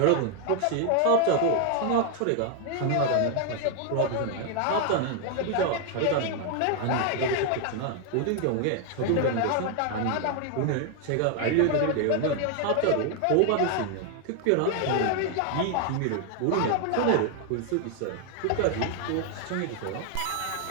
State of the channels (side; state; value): both; different; correlation 0.00